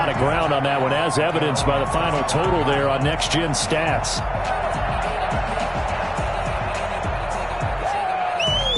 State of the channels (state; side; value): identical; both; correlation 1.00